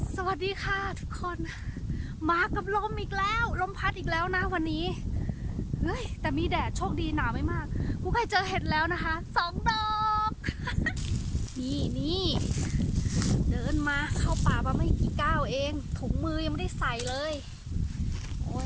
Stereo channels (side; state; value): both; identical; correlation 1.00